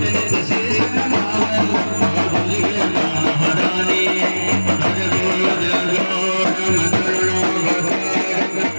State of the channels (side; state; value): both; inverted; correlation -1.00